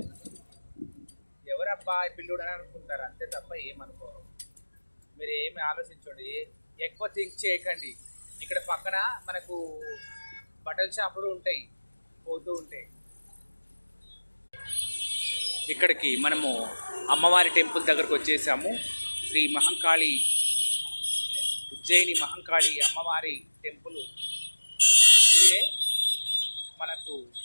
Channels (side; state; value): both; inverted; correlation -1.00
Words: ఎవరబ్బా పిల్లుడు అని అనుకుంటారు అంతే తప్ప ఏమనుకోరు. మీరు ఏమి ఆలోచించండి, ఎక్కువ థింక్ చేయకండి. ఇక్కడ పక్కన మనకు బట్టల షాపులు ఉంటాయి, పోతూ ఉంటాయి. ఇక్కడికి మనము అమ్మవారి టెంపుల్ దగ్గరకు వచ్చేసాము. శ్రీ మహంకాళి, ఉజ్జయిని మహంకాళి అమ్మవారి టెంపుల్ ఇదే. మనకు